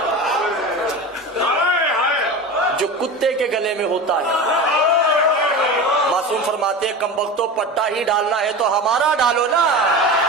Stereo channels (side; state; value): both; normal; correlation 0.29